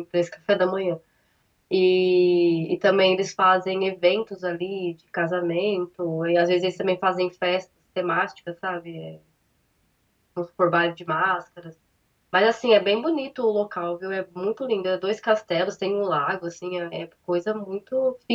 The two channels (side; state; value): both; identical; correlation 1.00